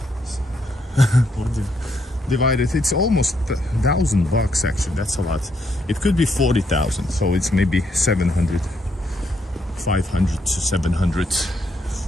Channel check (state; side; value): normal; both; correlation 0.75